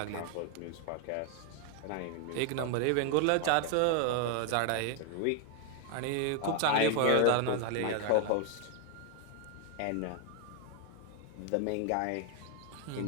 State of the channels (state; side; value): different; both; correlation 0.00